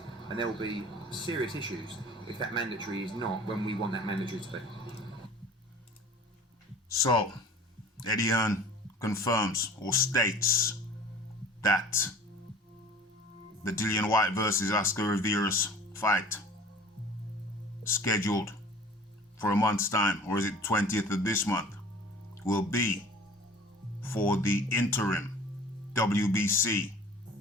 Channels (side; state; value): both; normal; correlation 0.45